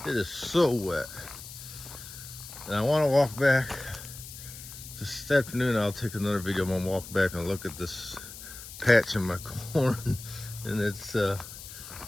It is so wet, and I want to walk back this afternoon. I'll take another video. I'm gonna walk back and look at this patch in my corn, and it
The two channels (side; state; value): left; noise; hiss, 13 dB below the sound